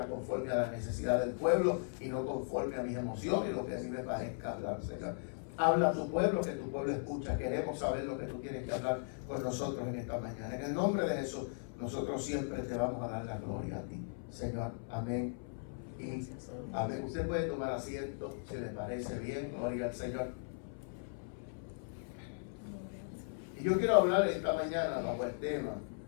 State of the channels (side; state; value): right; silent; 53 dB below the other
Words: conforme a la necesidad del pueblo y no conforme a mis emociones y lo que a mí me parezca hablar, Señor. Habla a tu pueblo, que tu pueblo escucha. Queremos saber lo que tú tienes que hablar con nosotros en esta mañana. En el nombre de Jesús, nosotros siempre te vamos a dar la gloria a ti, Señor. Amén. Y amén. Usted puede tomar asiento si le parece bien. Gloria al Señor. Y yo quiero hablar esta mañana bajo el tema